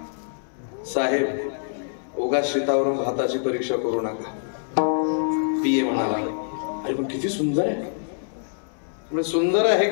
साहेब, उगाच शेतावरून भाताची परीक्षा करू नका. PA म्हणाला, अरे पण किती सुंदर आहे. सुंदर आहे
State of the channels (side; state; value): right; silent; 62 dB below the other